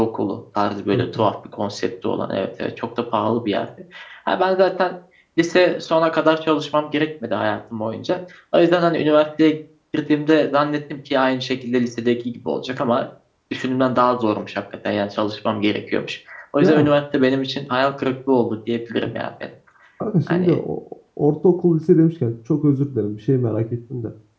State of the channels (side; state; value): both; identical; correlation 1.00